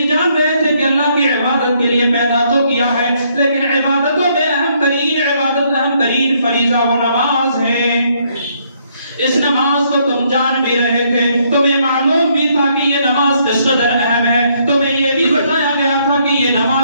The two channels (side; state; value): both; inverted; correlation -0.70